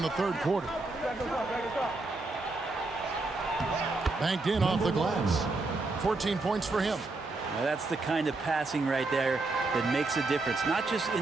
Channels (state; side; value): quieter; left; 3.3 dB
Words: the third quarter. Banked in off the glass. 14 points for him. Now that's the kind of passing right there that makes a difference. Not just